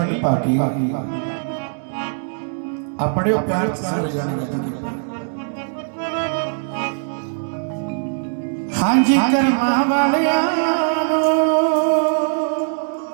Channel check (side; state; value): left; silent; digital silence